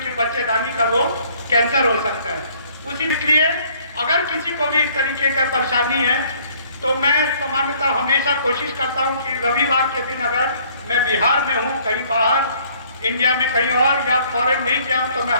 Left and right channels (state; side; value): inverted; both; correlation -0.60